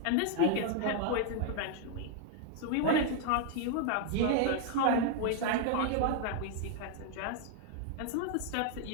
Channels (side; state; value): both; different; correlation 0.00